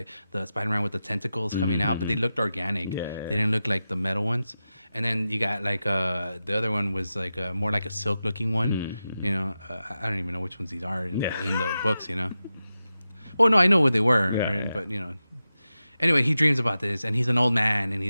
the Spider-Man with the tentacles coming out, but they looked organic. Yeah. They didn't look like the metal ones. And then you got like the other one was like more like a silk looking one. You know, I don't even know which ones these are in the books. You know. Well, no, I know what they were, right? But you know. Anyway, he dreams about this, and he's an old man, and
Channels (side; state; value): both; inverted; correlation -0.92